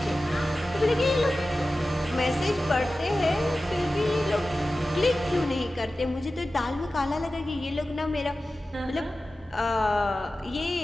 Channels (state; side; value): normal; both; correlation 0.95